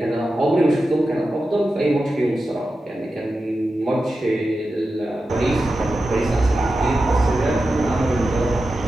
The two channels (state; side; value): normal; both; correlation 0.92